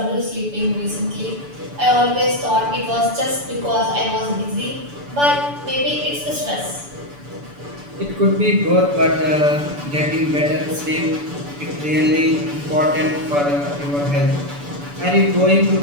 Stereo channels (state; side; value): late; left; 6.9 ms